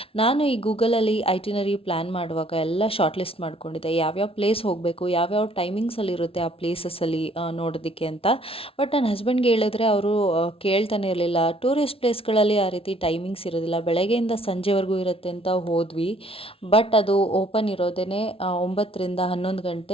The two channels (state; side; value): late; right; 0.26 ms